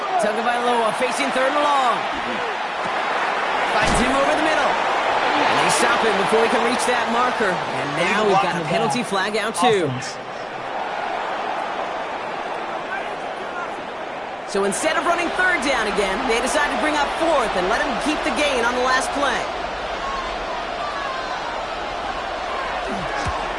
Tagovailoa facing third and long. Finds him over the middle. And they stop him before he can reach that marker. And now we've got a penalty flag out too. So instead of running third down again, they decide to bring up fourth and let him keep the gain on the last play.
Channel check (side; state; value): both; identical; correlation 1.00